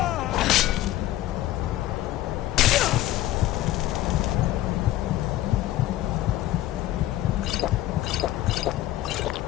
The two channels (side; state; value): right; quieter; 14.7 dB